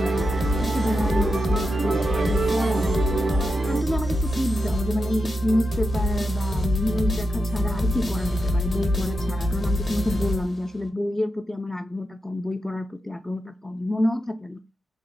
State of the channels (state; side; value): normal; both; correlation 0.88